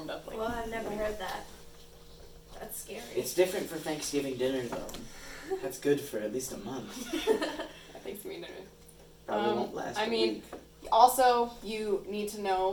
up. Like Well, I've never heard that. That's scary. It's different for Thanksgiving dinner though. That's good for at least a month. I think dinner. Probably won't last. I a mean, week. Also, you need to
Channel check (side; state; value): both; identical; correlation 1.00